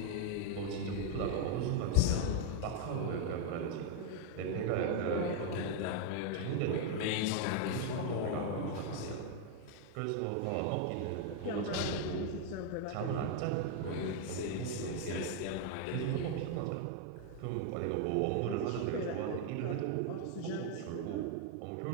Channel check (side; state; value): both; different; correlation 0.00